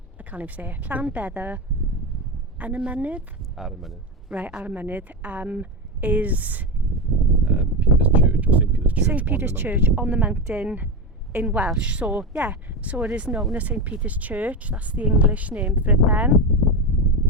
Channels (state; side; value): normal; both; correlation 0.17